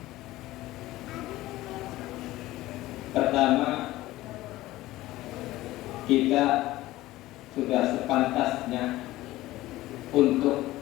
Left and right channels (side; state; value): right; quieter; 17.0 dB